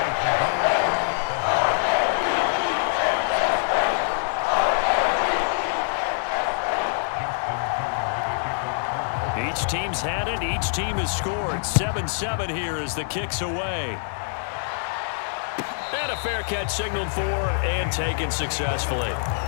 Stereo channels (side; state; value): right; silent; digital silence